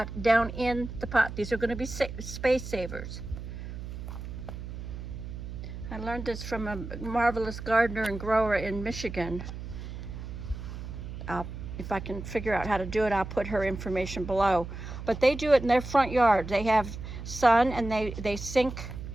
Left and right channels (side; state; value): right; noise; hum, 9 dB below the sound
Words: down in the pot. These are going to be space savers. I learned this from a marvelous gardener and grower in Michigan. If I can figure out how to do it, I'll put her information below. But they do it in their front yard. They have sun, and they sink